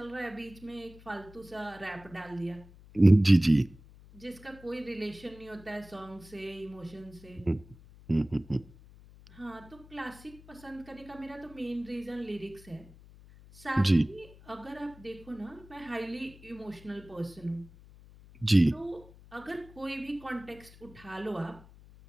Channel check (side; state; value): left; noise; hum, 21 dB below the sound